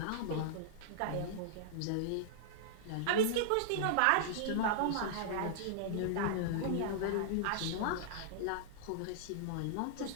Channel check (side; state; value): both; different; correlation -0.02